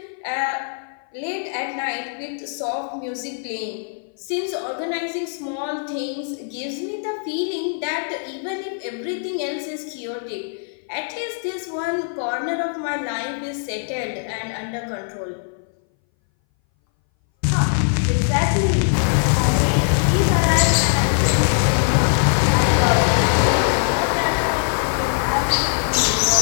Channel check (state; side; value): silent; right; 60 dB below the other